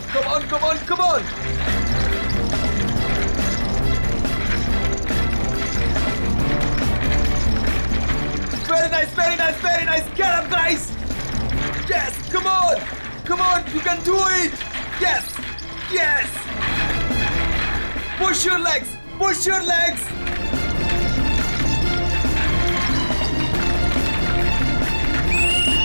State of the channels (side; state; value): both; inverted; correlation -1.00